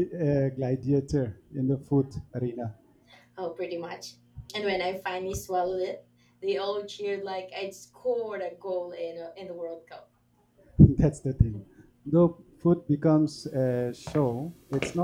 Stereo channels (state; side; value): identical; both; correlation 1.00